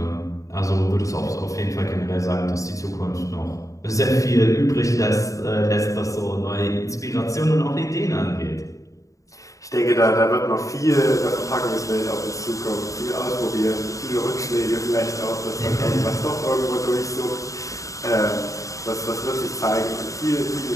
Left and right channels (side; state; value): right; late; 0.16 ms